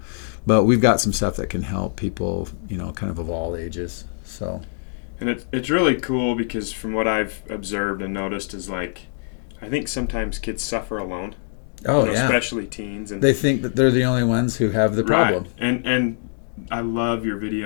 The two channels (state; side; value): silent; right; digital silence